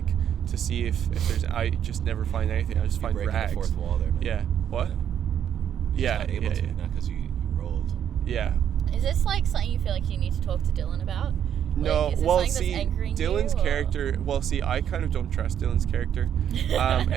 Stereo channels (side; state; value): left; quieter; 9.3 dB